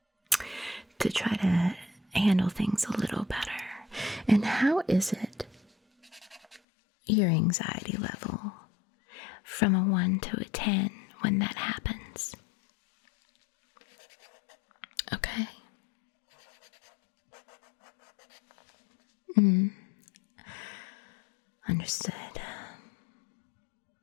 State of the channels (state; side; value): drops out; right; at 6.6 s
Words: try to handle things a little better. And how is it your anxiety level from a 1 to a 10 when that happens? Okay. Understood.